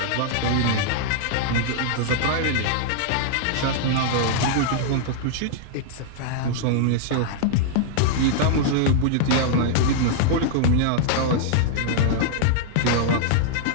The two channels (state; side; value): different; both; correlation -0.01